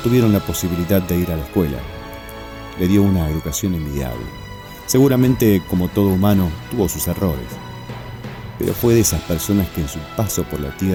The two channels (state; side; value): identical; both; correlation 1.00